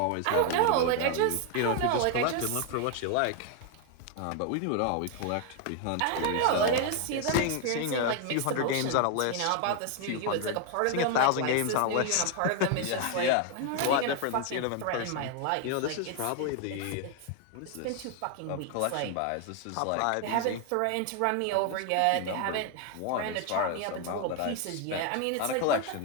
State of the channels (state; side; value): different; both; correlation 0.00